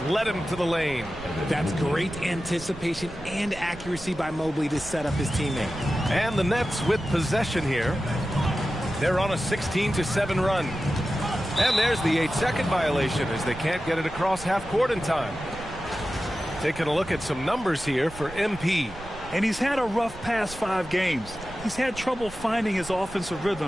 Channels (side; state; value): right; noise; rumble, 16 dB below the sound